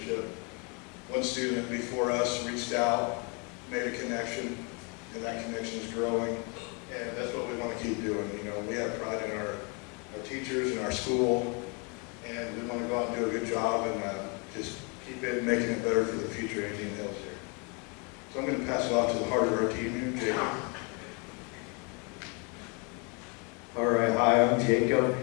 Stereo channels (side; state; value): right; quieter; 33.0 dB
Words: One student before us reached out, made a connection, and that connection is growing. And that's what we want to keep doing. You know, we have pride in our teachers and our school, and we want to go out and do a good job and just keep it, making it better for the future of Indian Hills here. So I'm going to pass it off to the heart of our team here, Jacob. All right, hi, I'm Jacob,